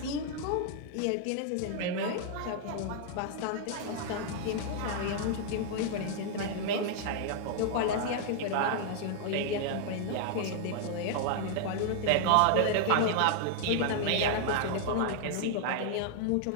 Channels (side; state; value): both; different; correlation 0.00